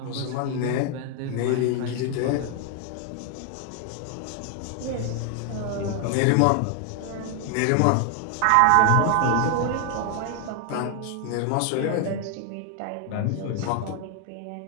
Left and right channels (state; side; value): different; both; correlation 0.00